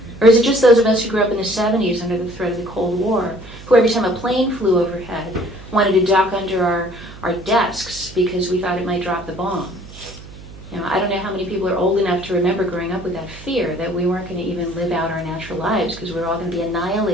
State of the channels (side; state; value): right; noise; hum, 17 dB below the sound